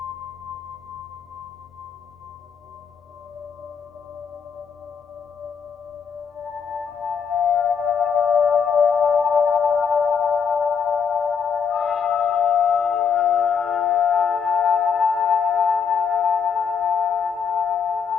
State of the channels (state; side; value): quieter; right; 6.7 dB